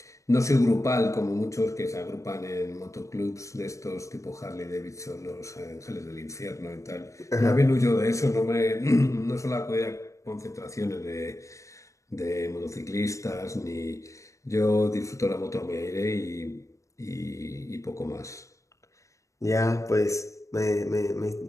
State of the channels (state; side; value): late; right; 0.15 ms